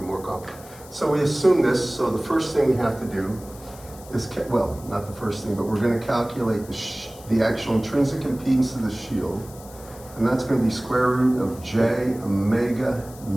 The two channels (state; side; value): noise; left; hiss, 20 dB below the sound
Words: complicated. So we assume this, so the first thing we have to do is, well, not the first thing, but we're going to calculate the actual intrinsic impedance of the shield, and that's going to be square root of j omega